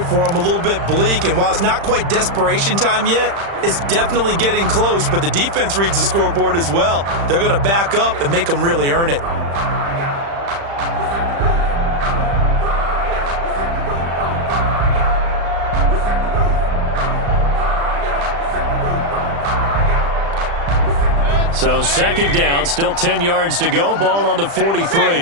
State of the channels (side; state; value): left; late; 35 ms